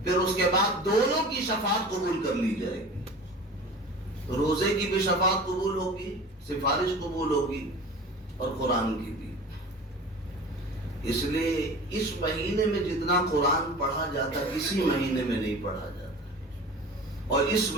پھر اس کے بعد دونوں کی شفاعت قبول کر لی جائے گی، روزے کی بھی شفاعت قبول ہوگی، سفارش قبول ہوگی، اور قرآن کی بھی۔ اس لیے اس مہینے میں جتنا قرآن پڑھا جاتا کسی مہینے میں نہیں پڑھا جاتا، اور اس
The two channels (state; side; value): normal; both; correlation 0.38